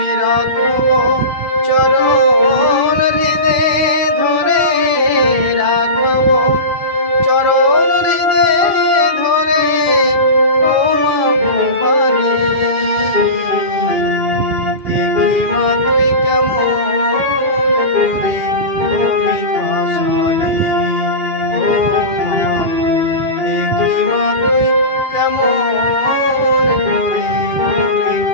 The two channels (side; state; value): left; late; 2.4 ms